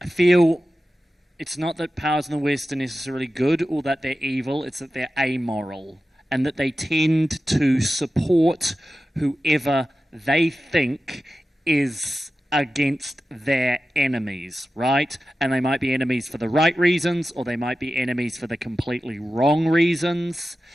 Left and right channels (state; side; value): normal; both; correlation 0.94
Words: I feel it's not that powers in the West are necessarily good or that they're evil, it's that they're amoral, and that they tend to support whoever they think is against their enemies, right? And they might be enemies for the right reasons, or they might be enemies for the completely wrong reasons.